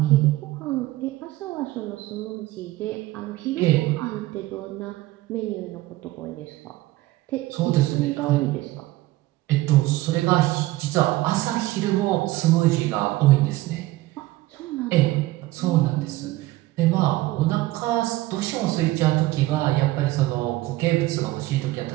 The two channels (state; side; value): quieter; left; 17.7 dB